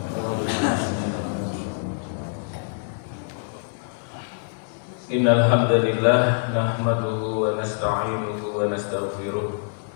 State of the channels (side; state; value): right; silent; digital silence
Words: Innal hamdalillah nahmaduhu wa nasta'inuhu wa nastaghfiruh